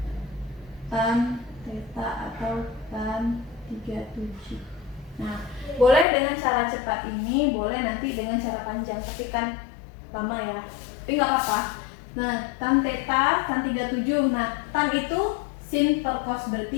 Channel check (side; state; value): right; drops out; at 6.1 s